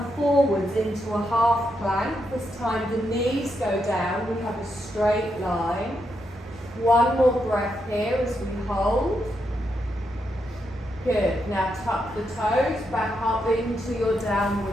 forwards into a half plank. This time the knees go down, we have a straight line. One more breath here as we hold. Good. Now tuck the toes back up into your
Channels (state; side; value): normal; both; correlation 0.82